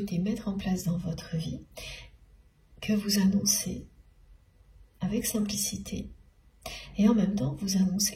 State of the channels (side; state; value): both; identical; correlation 1.00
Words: mettre en place dans votre vie, que vous annoncez avec simplicité. Et en même temps, vous